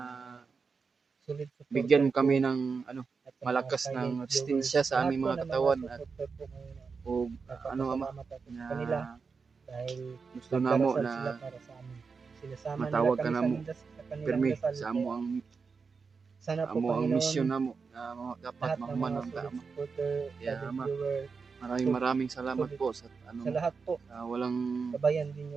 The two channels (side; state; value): left; quieter; 5.1 dB